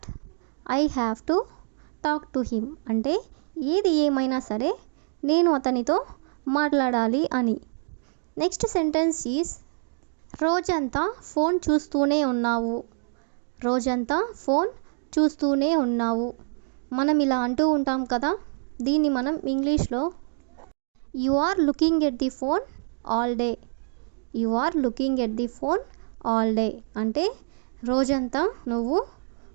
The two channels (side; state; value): left; silent; digital silence